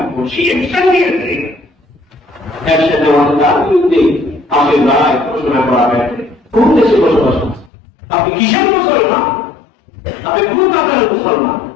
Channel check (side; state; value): right; drops out; at 7.7 s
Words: সে একসাথে নিয়েছে, একসাথে তার বিরুদ্ধে আপনি রায় ঘোষণা করা হয়েছে কোন দেশে বসবাস করছেন? আপনি কিসের মুসলমান? আপনি কোন কাতারের মুসলমান?